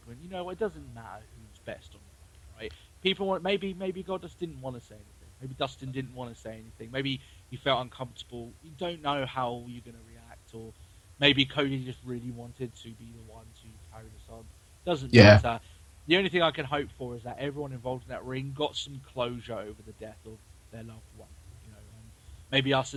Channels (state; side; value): identical; both; correlation 1.00